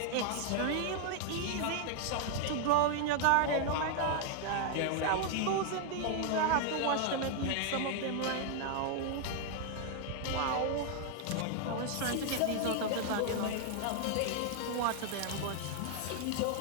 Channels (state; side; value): different; both; correlation 0.00